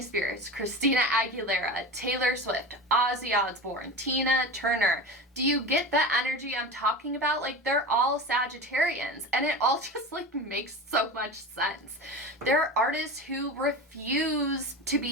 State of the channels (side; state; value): both; normal; correlation 0.29